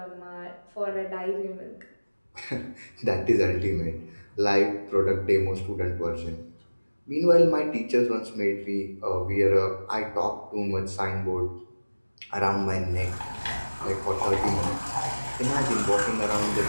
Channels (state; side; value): inverted; both; correlation -1.00